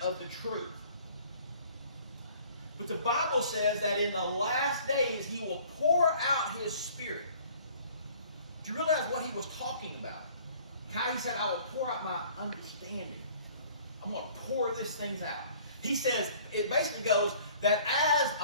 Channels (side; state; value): both; inverted; correlation -0.53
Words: the truth. But the Bible says that in the last days He will pour out His Spirit. Do you realize what He was talking about? How He said, I will pour out my understanding. I'm going to pour these things out. He says, it basically goes that as